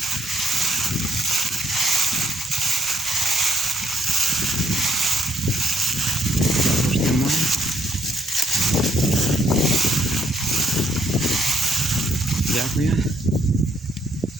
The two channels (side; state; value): both; normal; correlation 0.71